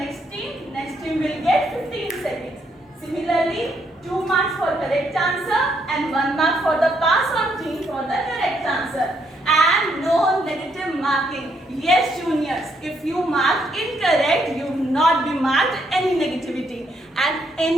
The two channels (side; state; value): both; normal; correlation 0.74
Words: team. Next team will get 15 seconds. Similarly, 2 marks for correct answer and 1 mark for the pass on team for the correct answer. And no negative marking. Yes, juniors, if you mark incorrect, you will not be marked any negativity. And